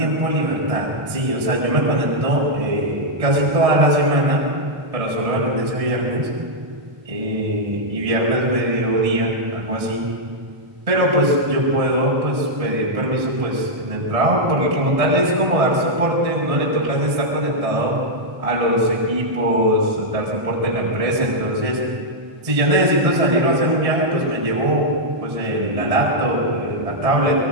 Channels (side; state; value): left; late; 1.6 ms